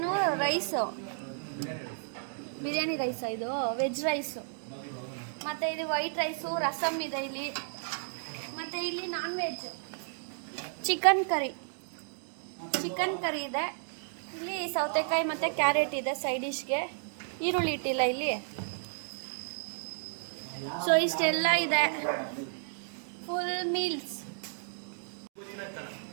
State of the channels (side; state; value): left; silent; digital silence